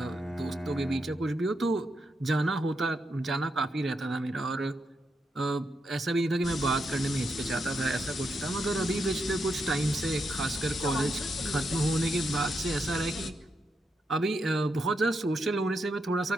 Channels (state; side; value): normal; both; correlation 0.83